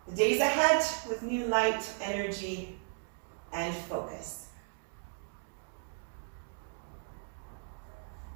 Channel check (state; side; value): silent; left; digital silence